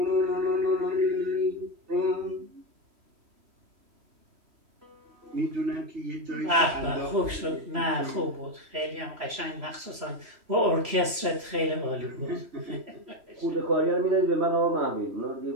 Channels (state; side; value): late; left; 3.0 ms